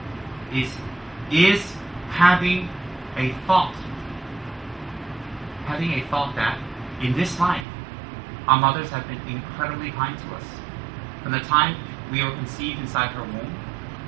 is having a thought that in this life, our mothers have been incredibly kind to us. From the time we were conceived inside her womb,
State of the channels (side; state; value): left; drops out; at 7.7 s